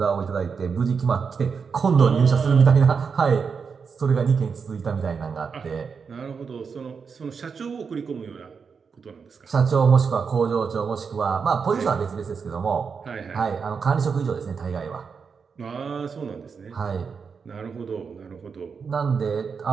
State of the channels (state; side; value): quieter; left; 5.8 dB